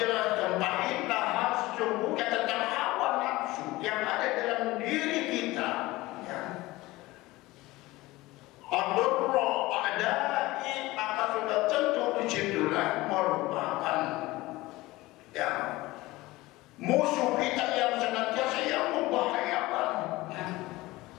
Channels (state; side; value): quieter; right; 19.5 dB